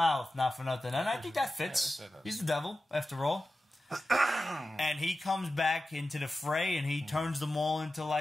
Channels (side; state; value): both; normal; correlation 0.93